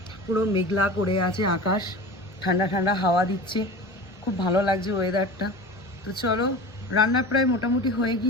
পুরো মেঘলা করে আছে আকাশ, ঠান্ডা ঠান্ডা হাওয়া দিচ্ছে, খুব ভালো লাগছে ওয়েদারটা। তো চলো, রান্না প্রায় মোটামুটি হয়ে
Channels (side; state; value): both; normal; correlation 0.34